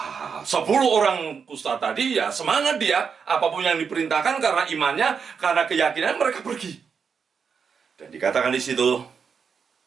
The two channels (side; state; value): left; quieter; 6.2 dB